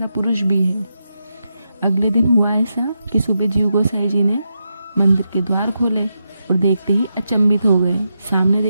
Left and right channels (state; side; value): inverted; both; correlation -0.86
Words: पुरुष भी है। अगले दिन हुआ ऐसा कि सुबह जीव गोसाई जी ने मंदिर के द्वार खोले और देखते ही अचंभित हो गए। सामने